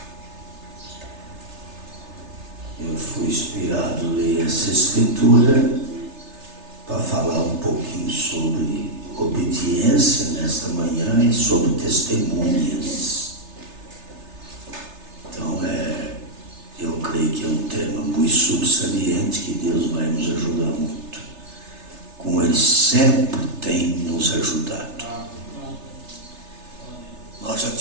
Eu fui inspirado a ler essa escritura para falar um pouquinho sobre obediência nesta manhã e sobre testemunhas. Então eu creio que é um tema muito subsaliente que Deus vai nos ajudar muito, como Ele sempre tem nos ajudado. Nós já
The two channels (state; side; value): late; left; 3.3 ms